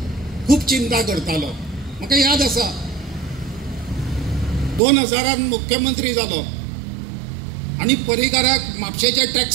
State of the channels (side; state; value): left; drops out; at 4.8 s